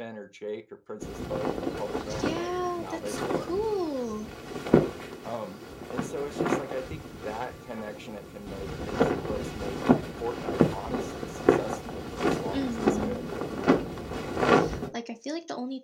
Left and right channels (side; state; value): both; identical; correlation 1.00